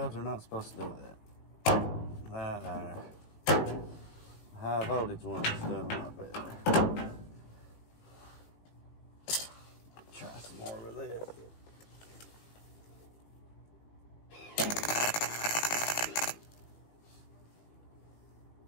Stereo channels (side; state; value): right; late; 18 ms